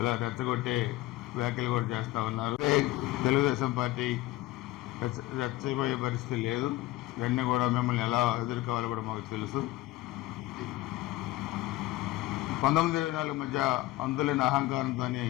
రెచ్చగొట్టే వ్యాఖ్యలు కూడా చేస్తూ ఉన్నారు. తెలుగుదేశం పార్టీ రెచ్చబోయే పరిస్థితి లేదు. ఇవన్నీ కూడా మిమ్మల్ని ఎలా ఎదుర్కోవాలో కూడా మాకు తెలుసు. 1924 మధ్య అందులేని అహంకారంతో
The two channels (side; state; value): right; quieter; 17.4 dB